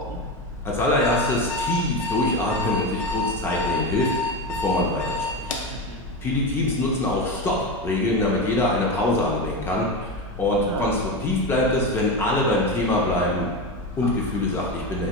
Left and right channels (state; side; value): normal; both; correlation 0.18